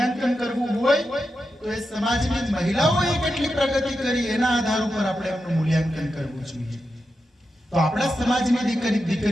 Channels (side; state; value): both; normal; correlation 0.89